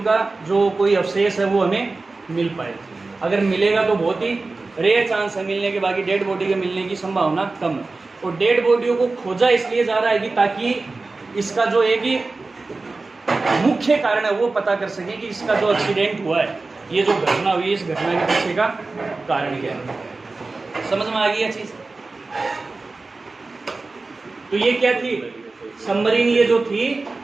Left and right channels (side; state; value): left; quieter; 3.6 dB